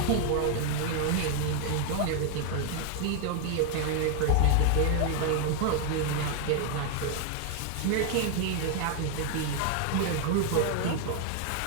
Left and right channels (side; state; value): both; different; correlation 0.00